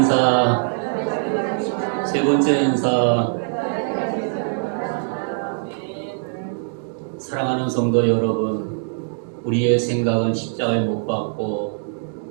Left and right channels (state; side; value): silent; left; digital silence